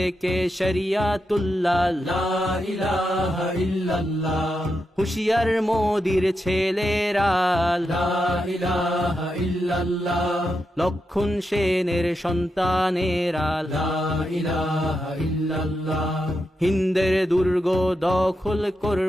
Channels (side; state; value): both; normal; correlation 0.86